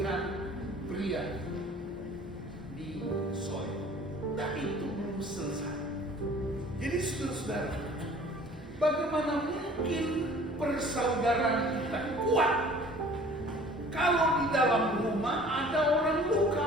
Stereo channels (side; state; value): both; normal; correlation 0.50